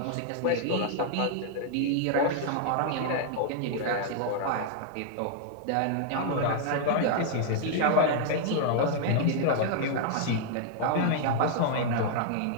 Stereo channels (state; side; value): different; both; correlation -0.01